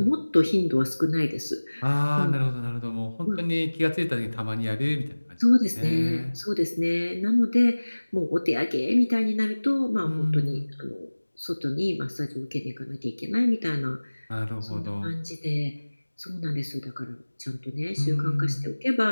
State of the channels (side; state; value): both; inverted; correlation -1.00